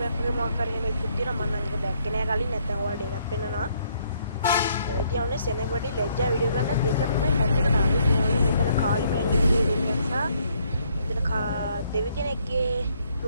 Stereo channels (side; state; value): both; inverted; correlation -0.68